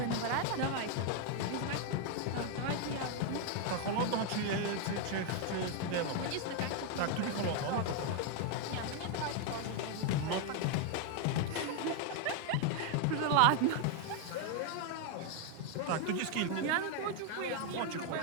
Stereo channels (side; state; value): both; different; correlation 0.01